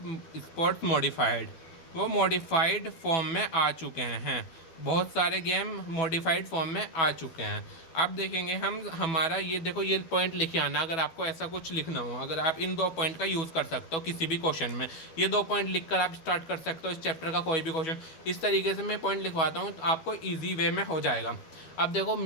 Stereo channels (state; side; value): late; right; 12 ms